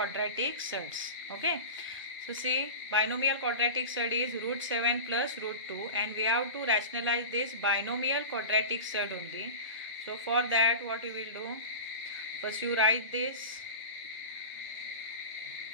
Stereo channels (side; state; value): both; inverted; correlation -0.30